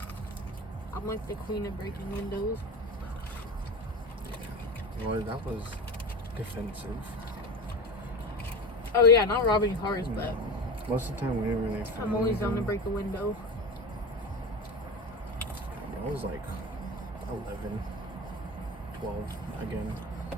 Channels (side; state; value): both; normal; correlation 0.28